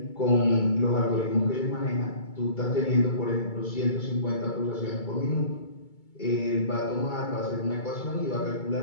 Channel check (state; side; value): late; right; 2.2 ms